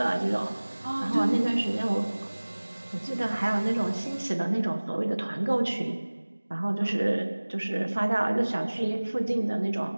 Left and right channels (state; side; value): inverted; both; correlation -1.00